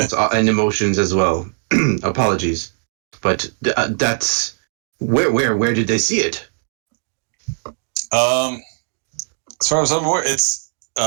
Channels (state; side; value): silent; left; digital silence